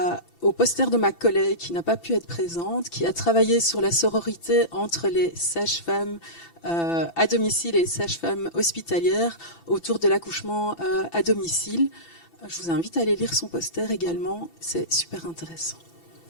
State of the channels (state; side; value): late; right; 6.0 ms